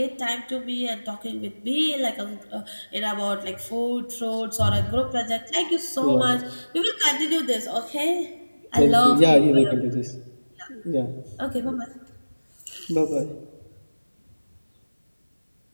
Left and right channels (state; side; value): inverted; both; correlation -1.00